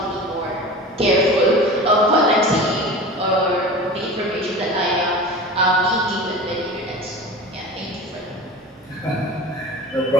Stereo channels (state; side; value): normal; both; correlation 0.34